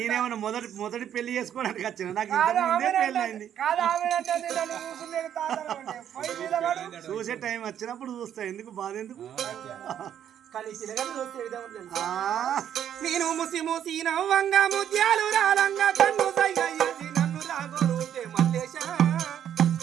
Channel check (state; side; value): quieter; left; 9.8 dB